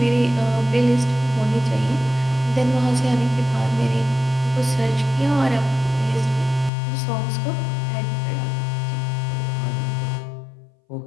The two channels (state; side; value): drops out; right; at 6.7 s